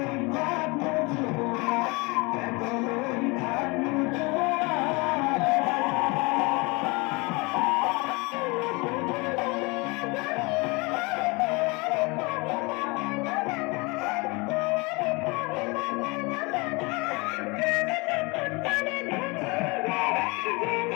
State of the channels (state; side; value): quieter; right; 27.1 dB